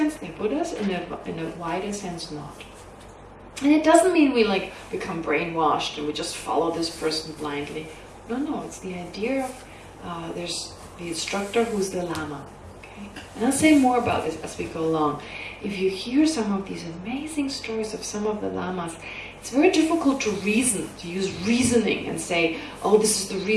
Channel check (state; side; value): identical; both; correlation 1.00